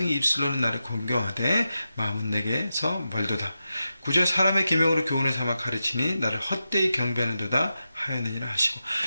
입술로는 나를 공경하되 마음은 내게서 멀도다. 9절 사람의 계명으로 교훈을 삼아 가르치니 나를 헛되이 경배하는도다 하였느니라 하시고,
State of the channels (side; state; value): both; inverted; correlation -0.90